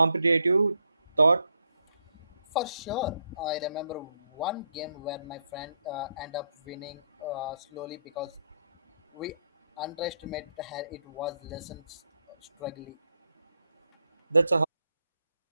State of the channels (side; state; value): both; inverted; correlation -0.76